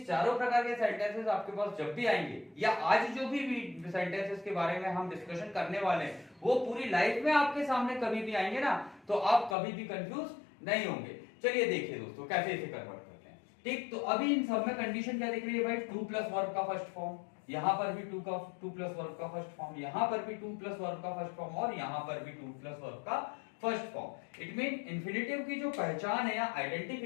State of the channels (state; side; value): drops out; right; at 9.6 s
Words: चारों प्रकार के सेंटेंसेस आपके पास जब भी आएंगे, या आज जो भी सेंटेंसेस के बारे में हम डिस्कशन करने वाले हैं, वो पूरी लाइफ में आपके सामने कभी भी आएंगे ना, तो आप कभी भी कंफ्यूज नहीं होंगे। चलिए देखिए दोस्तों कैसे इसे कन्वर्ट करते हैं। ठीक, तो अभी इन सब में कंडीशन क्या दिख रही है भाई? टू प्लस वर्ब का फर्स्ट फॉर्म, यहां पर भी टू प्लस वर्ब का फर्स्ट फॉर्म, यहां पर भी टू प्लस वर्ब का फर्स्ट फॉर्म, और यहां पर भी टू प्लस वर्ब का first form. It mean infinitive की जो पहचान है या